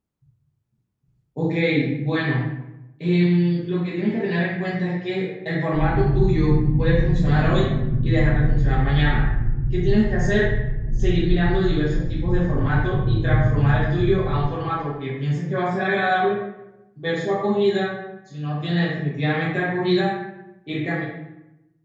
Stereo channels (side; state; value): both; identical; correlation 1.00